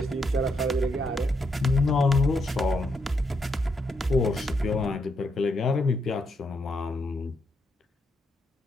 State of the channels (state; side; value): normal; both; correlation 0.79